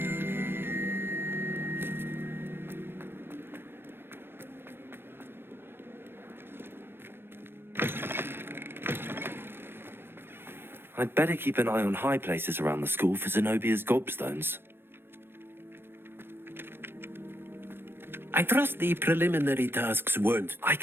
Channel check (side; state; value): left; late; 0.10 ms